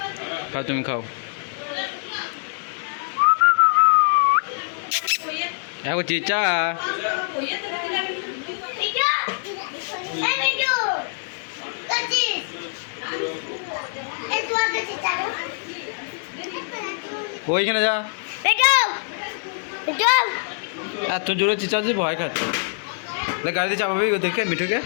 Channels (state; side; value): silent; right; 63 dB below the other